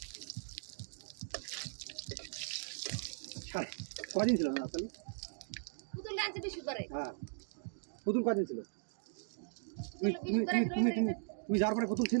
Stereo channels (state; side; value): silent; left; digital silence